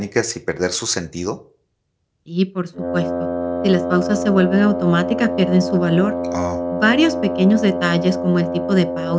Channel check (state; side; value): identical; both; correlation 1.00